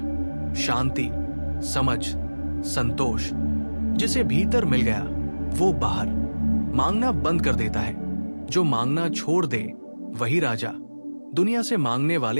शांति, समझ, संतोष, जिसे भीतर मिल गया वो बाहर मांगना बंद कर देता है। जो मांगना छोड़ दे वही राजा। दुनिया से मांगने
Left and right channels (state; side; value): inverted; both; correlation -1.00